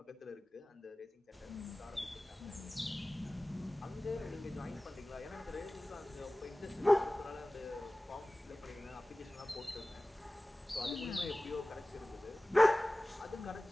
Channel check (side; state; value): both; normal; correlation 0.98